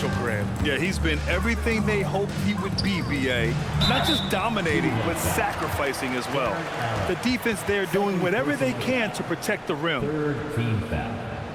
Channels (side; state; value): both; identical; correlation 1.00